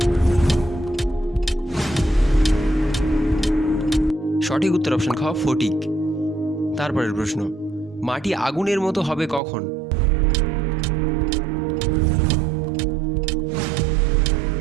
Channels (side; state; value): left; drops out; at 9.4 s